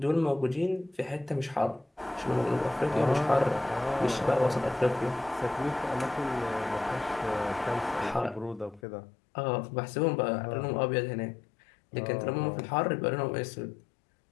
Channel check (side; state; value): right; drops out; at 8.8 s